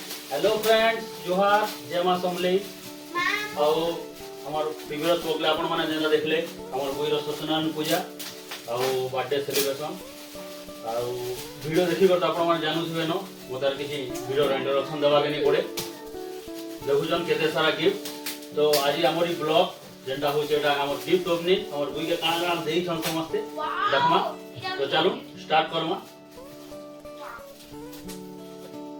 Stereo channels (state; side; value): identical; both; correlation 1.00